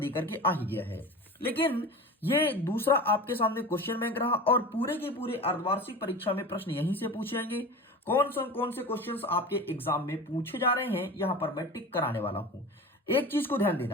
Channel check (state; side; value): normal; both; correlation 0.33